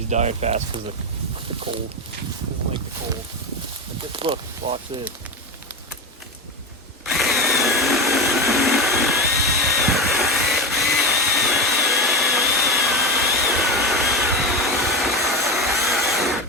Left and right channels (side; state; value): both; normal; correlation 0.20